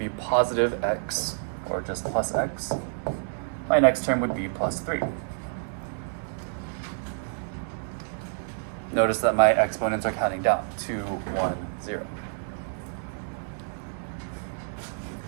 positive x, or just plus x. My next term would be plus 3. Notice that my exponents are counting down. 2, 1, 0.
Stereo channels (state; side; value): silent; left; 59 dB below the other